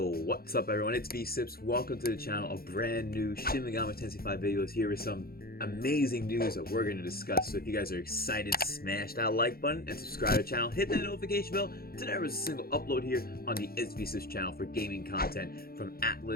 what's up everyone? It's V-Sips. Welcome to the channel. A brand new Shin Megami Tensei V videos here with some amazing news that we're going to discuss. So if you guys are excited, smash that like button and subscribe to the channel. Hit that notification bell to never miss a single upload here on the V-Sips channel for gaming content from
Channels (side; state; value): right; late; 0.44 ms